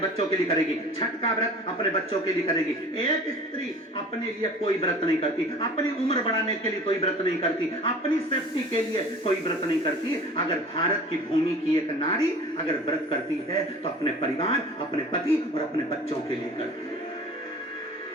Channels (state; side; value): normal; both; correlation 0.43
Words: के लिए करेगी, छठ का व्रत अपने बच्चों के लिए करेगी। एक स्त्री अपने लिए कोई व्रत नहीं करती, अपनी उम्र बढ़ाने के लिए कोई व्रत नहीं करती, अपनी सेफ्टी के लिए कोई व्रत नहीं करती। अगर भारत की भूमि की एक नारी अगर व्रत करती है तो अपने परिवार, अपने पति और अपने बच्चों के लिए करती है।